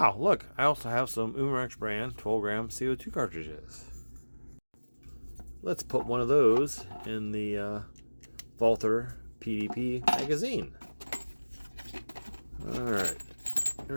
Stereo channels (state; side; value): inverted; both; correlation -1.00